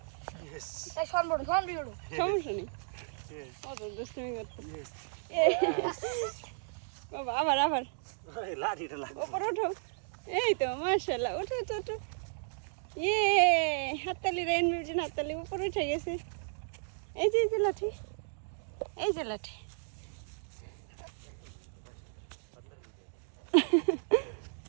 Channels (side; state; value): left; silent; digital silence